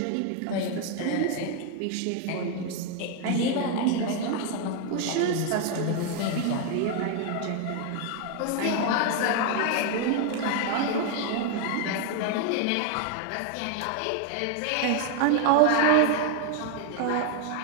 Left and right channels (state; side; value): different; both; correlation 0.01